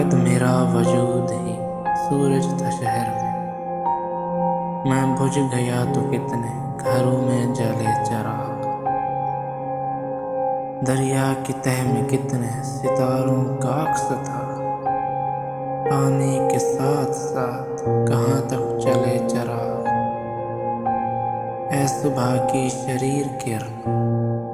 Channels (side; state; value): both; identical; correlation 1.00